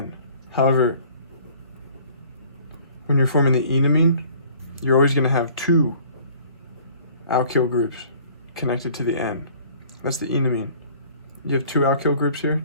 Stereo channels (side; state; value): both; inverted; correlation -0.53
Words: However, when you're forming the enamine, you're always going to have two alkyl groups connected to the N. That's the enamine. You have two alkyl groups here.